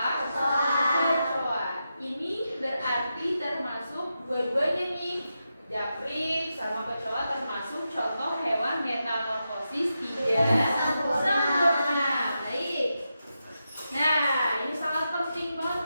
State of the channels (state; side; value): inverted; both; correlation -0.88